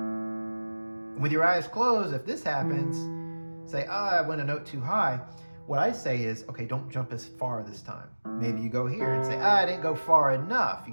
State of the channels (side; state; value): both; inverted; correlation -1.00